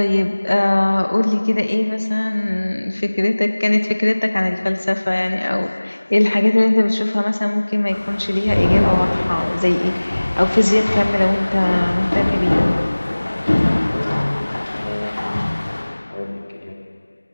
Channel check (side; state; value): both; inverted; correlation -1.00